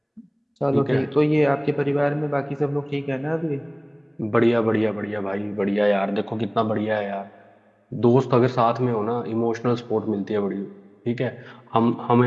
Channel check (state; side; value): identical; both; correlation 1.00